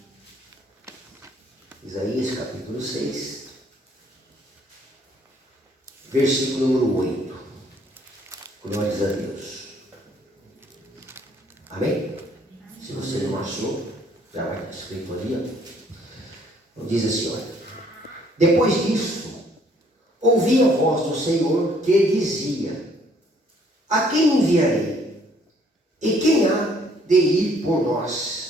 Isaías, capítulo 6, versículo número 8. Glórias a Deus. Amém? Se você não achou, já vai estar escrito ali, ó. Diz assim, olha. Depois disso, ouvi a voz do Senhor que dizia: a quem enviarei? E quem há de ir por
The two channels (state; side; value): normal; both; correlation 0.63